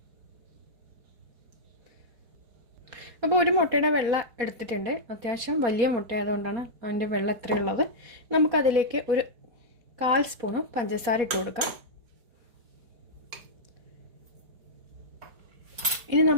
അപ്പോൾ ഒരു മുട്ടയുടെ വെള്ള എടുത്തിട്ടുണ്ട്. അത്യാവശ്യം വലിയ മുട്ട ആയതുകൊണ്ടാണ് അതിൻ്റെ വെള്ളം എത്രയുള്ളത്. നമുക്കതിലേക്ക് ഒരു 1/4 സ്പൂൺ പഞ്ചസാര ഇട്ട് കൊടുക്കാം. ഇനി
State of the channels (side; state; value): left; late; 4.2 ms